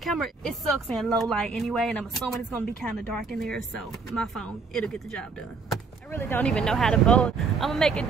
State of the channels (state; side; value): quieter; left; 4.7 dB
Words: it sucks in low light anyway, and I'm assuming it's gonna be kind of dark in there, so my phone, it'll get the job done. I really don't even know how to bowl. I'm gonna make it